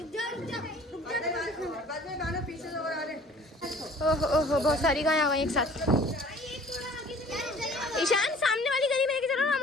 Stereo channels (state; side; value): normal; both; correlation 0.50